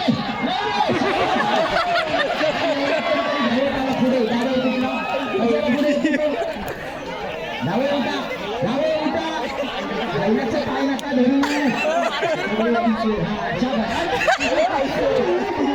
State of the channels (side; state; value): both; identical; correlation 1.00